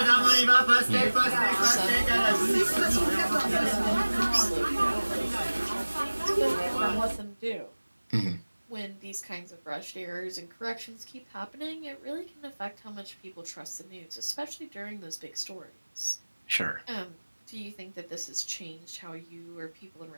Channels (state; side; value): inverted; both; correlation -1.00